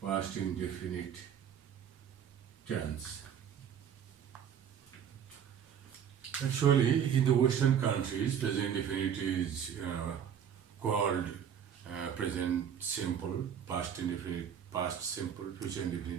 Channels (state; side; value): quieter; left; 8.4 dB